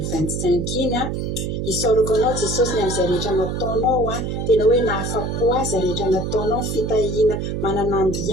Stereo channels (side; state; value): right; noise; hum, 2 dB below the sound